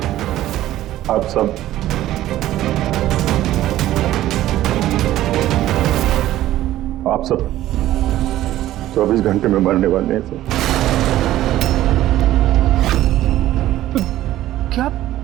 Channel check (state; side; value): quieter; left; 14.2 dB